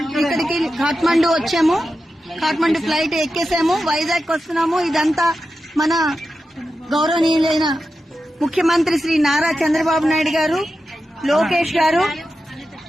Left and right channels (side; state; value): both; normal; correlation 0.91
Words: ఇక్కడికి కాఠ్మండు వచ్చాము. కాఠ్మండు ఫ్లైట్ ఎక్కేసాము, వైజాగ్ వస్తున్నాము. ఇదంతా మన గౌరవనీయులైన ముఖ్యమంత్రి శ్రీ నారా చంద్రబాబు నాయుడు గారు, లోకేష్ గారు,